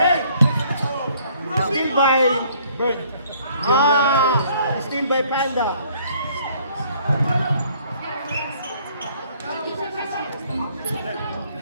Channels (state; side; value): inverted; both; correlation -0.61